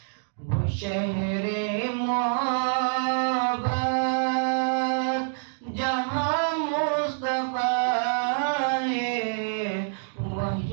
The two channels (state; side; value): silent; left; digital silence